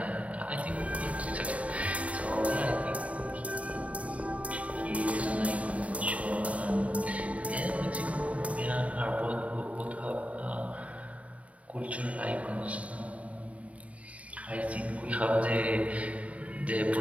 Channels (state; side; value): late; left; 0.067 ms